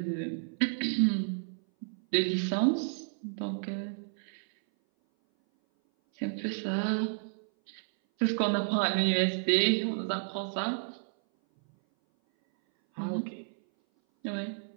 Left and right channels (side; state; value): left; silent; 57 dB below the other